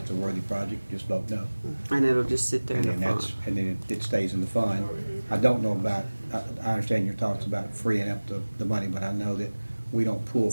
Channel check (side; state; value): both; inverted; correlation -1.00